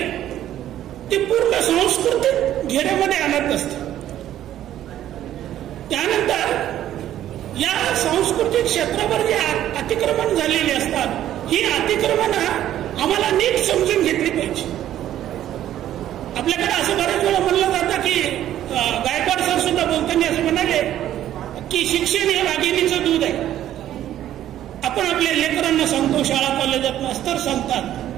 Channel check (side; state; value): left; quieter; 12.1 dB